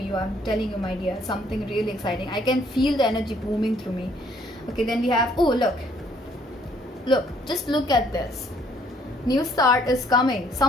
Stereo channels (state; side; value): normal; both; correlation 0.64